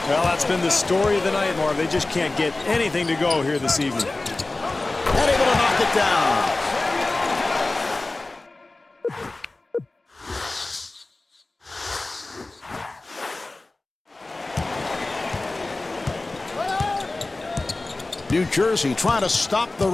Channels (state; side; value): quieter; right; 3.1 dB